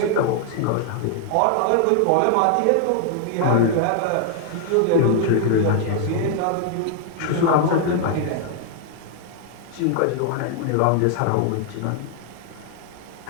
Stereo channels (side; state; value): both; different; correlation 0.00